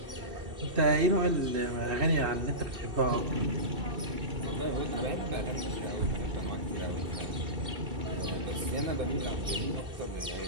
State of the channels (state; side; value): late; left; 2.6 ms